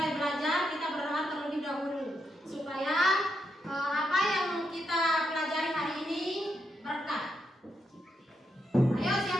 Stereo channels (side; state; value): both; normal; correlation 0.82